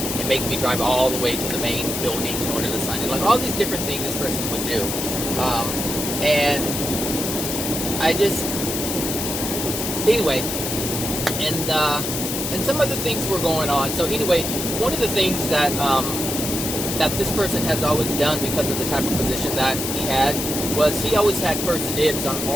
and make me drive all the way to the main building in order to sign it. Like all these different things this person would do. And I just, anyway, and some other things were going on. So anyway, one of the things that that this person has always done, because of the type of position that he had, was he always had first dibs on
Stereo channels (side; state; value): left; noise; hiss, 3 dB below the sound